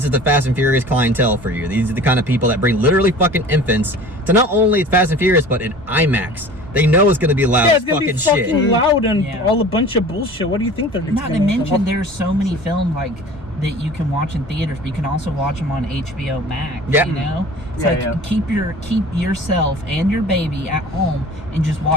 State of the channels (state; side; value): normal; both; correlation 0.42